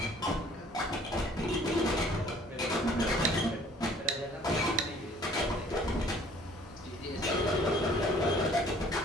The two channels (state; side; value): normal; both; correlation 0.55